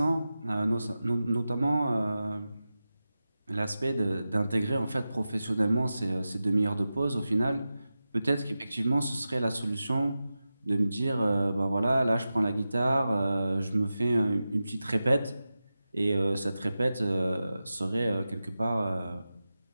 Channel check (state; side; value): inverted; both; correlation -0.93